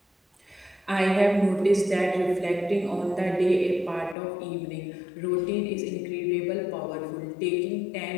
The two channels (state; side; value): drops out; right; at 4.2 s